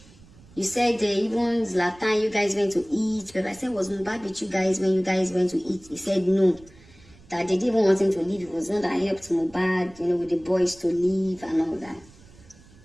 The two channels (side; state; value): right; noise; rumble, 25 dB below the sound